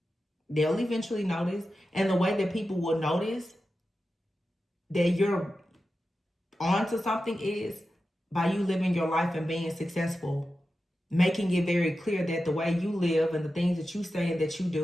They'll eventually notice. And the way that people will notice that you're onto something is by you living your life and being successful. Making it very clear that the way you live and the things that you say and that you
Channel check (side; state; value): both; normal; correlation 0.92